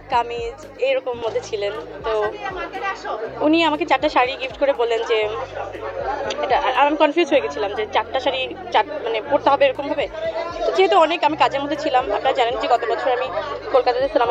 কামিজ এরকম মধ্যে ছিলেন। তো উনি আমাকে 4টা শাড়ি গিফট করে বললেন যে এটা, আমি কনফিউজ হয়ে গেছিলাম যে 4টা শাড়ি মানে পরতে হবে এরকম ভাবে। তো যেহেতু অনেক আমি কাজের মধ্যে ছিলাম, আপনারা জানেন যে গত বছর আমি কলকাতাতে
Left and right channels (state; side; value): identical; both; correlation 1.00